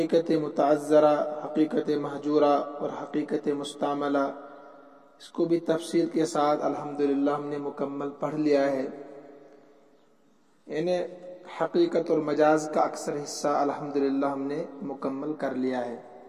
متعذرہ، حقیقت محجورہ اور حقیقت مستعملہ، اس کو بھی تفصیل کے ساتھ الحمدللہ ہم نے مکمل پڑھ لیا ہے۔ یعنی حقیقت اور مجاز کا اکثر حصہ الحمدللہ ہم نے مکمل کر لیا ہے۔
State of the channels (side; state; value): both; identical; correlation 1.00